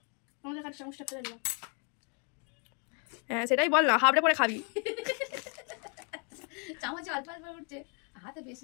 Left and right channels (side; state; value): right; quieter; 37.6 dB